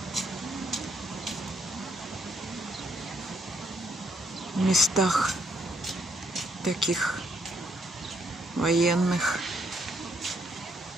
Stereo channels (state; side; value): normal; both; correlation 0.72